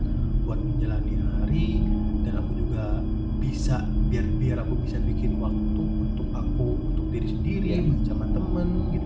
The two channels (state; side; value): identical; both; correlation 1.00